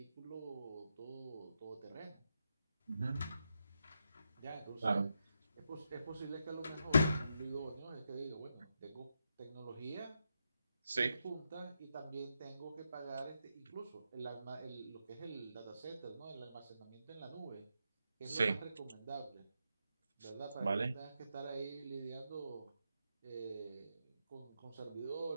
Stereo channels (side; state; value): both; inverted; correlation -0.84